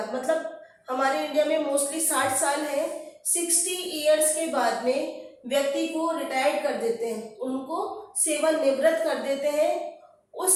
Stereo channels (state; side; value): identical; both; correlation 1.00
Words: मतलब हमारे इंडिया में मोस्टली 60 साल है, 60 इयर्स के बाद में व्यक्ति को रिटायर्ड कर देते हैं, उनको सेवानिवृत्त कर देते हैं।